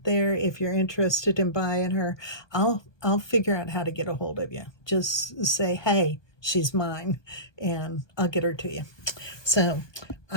there. If you're interested in buying her, I'll figure out how to get a hold of you. Just say, hey, she's mine, and I'll get her to you. So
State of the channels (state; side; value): late; right; 1.2 ms